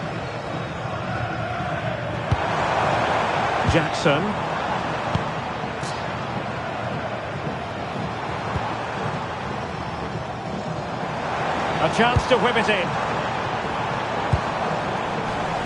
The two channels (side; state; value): both; identical; correlation 1.00